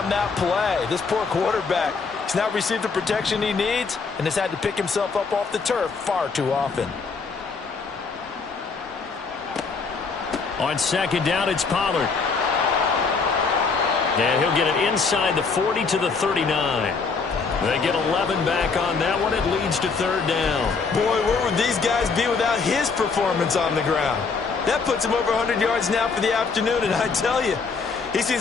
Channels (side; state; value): right; quieter; 4.9 dB